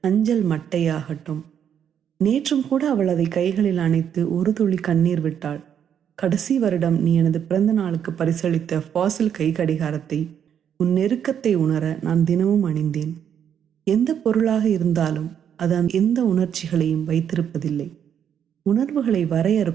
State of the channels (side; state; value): left; quieter; 8.7 dB